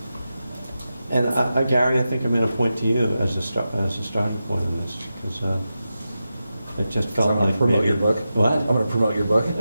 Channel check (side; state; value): both; inverted; correlation -0.91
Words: Gary, I think I'm going to point to you as a starting point in this, because it just felt I'm going like to promote maybe, your book. What? I'm going to promote your book.